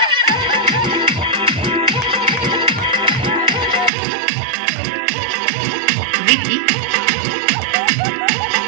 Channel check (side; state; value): left; drops out; at 3.9 s